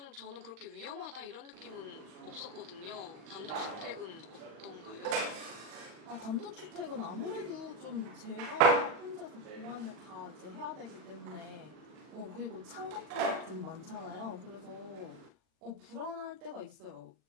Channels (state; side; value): late; left; 39 ms